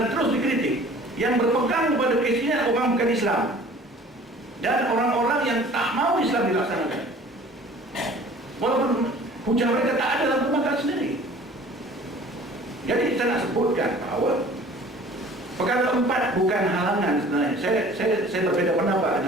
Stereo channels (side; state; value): both; normal; correlation 0.48